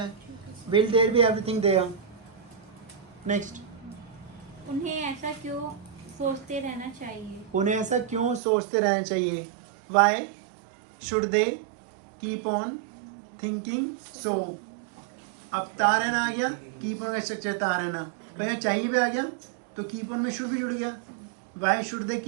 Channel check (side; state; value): left; drops out; at 8.4 s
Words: Will there be everything there. Next, उन्हें ऐसा क्यों सोचते रहना चाहिए? उन्हें ऐसा क्यों सोचते रहना चाहिए? Why should they keep on thinking so. अब तारना आ गया, कीप ऑन का स्ट्रक्चर तारना, पहले चाहिए भी आ गया तो कीप ऑन में शुड भी जुड़ गया। Why should they